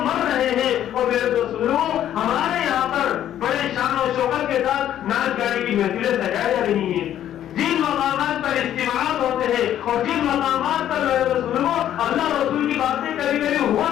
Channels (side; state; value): right; quieter; 11.2 dB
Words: مر رہے ہیں. اور میرے دوستوں ہمارے یہاں پر بڑے شان و شوکت کے ساتھ ناچ گانے کی محفلیں سجائی جا رہی ہیں. جن مقامات پر اجتماعات ہوتے ہیں اور جن مقامات پر اللہ رسول کی باتیں کبھی کبھی ہوا